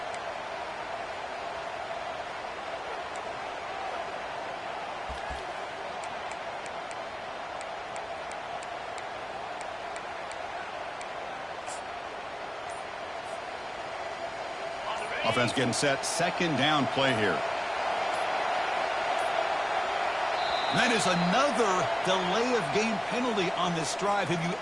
Offense getting set. 2nd down play here. And that is another delay of game penalty on this drive. Have you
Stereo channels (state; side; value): noise; right; rumble, 30 dB below the sound